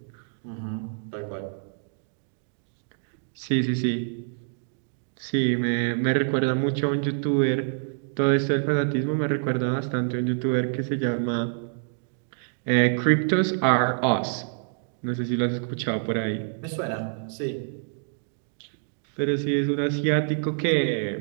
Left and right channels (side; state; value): left; silent; digital silence